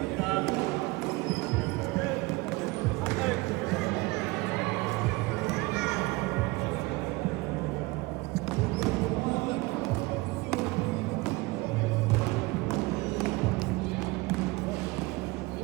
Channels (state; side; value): quieter; left; 22.7 dB